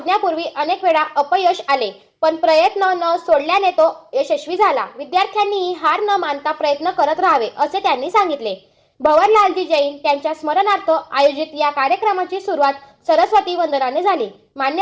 अनेक वेळा अपयश आले, पण प्रयत्न न सोडल्याने तो यशस्वी झाला. विद्यार्थ्यांनीही हार न मानता प्रयत्न करत राहावे, असे त्यांनी सांगितले. भवरलालजी जैन त्यांच्या स्मरणार्थ आयोजित या कार्यक्रमाची सुरुवात सरस्वती वंदनाने झाली.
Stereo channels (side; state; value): both; identical; correlation 1.00